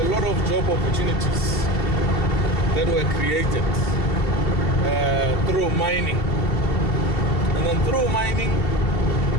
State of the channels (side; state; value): right; late; 2.7 ms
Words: lot of job opportunities that were created through mining. And then through mining,